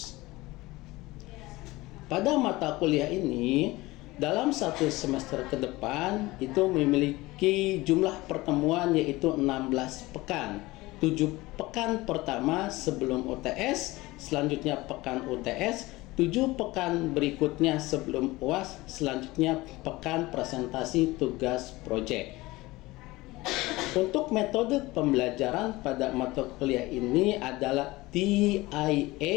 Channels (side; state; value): right; quieter; 20.2 dB